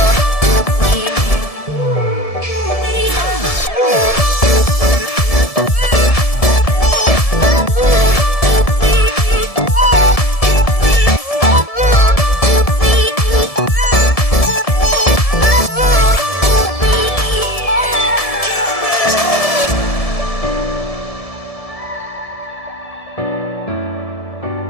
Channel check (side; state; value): right; late; 1.7 ms